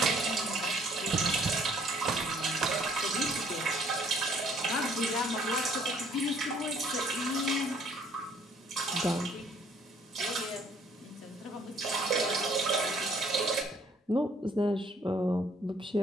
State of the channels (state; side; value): normal; both; correlation 0.61